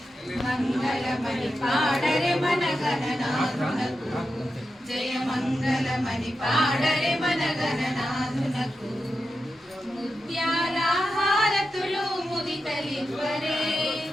మంగళమణి పాడరే మన గణనాథునకు, జయ మంగళమణి పాడరే మన గణనాథునకు. ముత్యాల హారతులు ముదితలివ్వరే,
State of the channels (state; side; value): normal; both; correlation 0.90